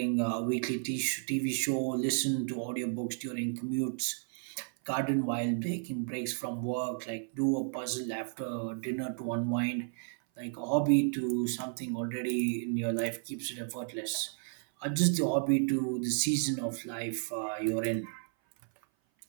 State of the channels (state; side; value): silent; left; 56 dB below the other